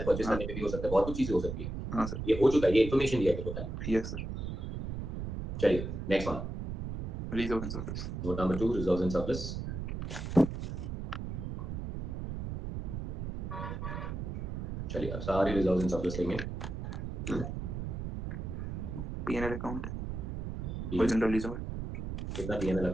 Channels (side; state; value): right; noise; rumble, 5 dB below the sound